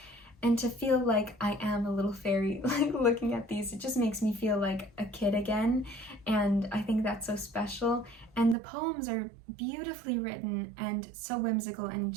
and to feel like I am a little fairy, like looking at these, it just makes me feel like a kid again, and I think that's so special. And the poems are beautifully written and so whimsical and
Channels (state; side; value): drops out; left; at 8.6 s